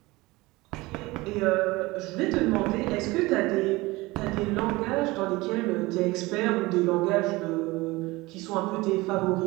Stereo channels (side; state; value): left; quieter; 21.3 dB